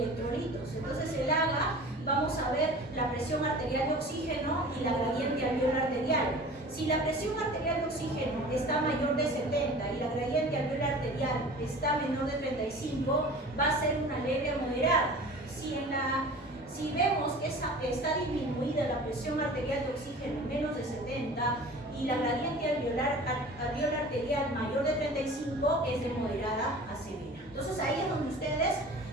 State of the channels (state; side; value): normal; both; correlation 0.41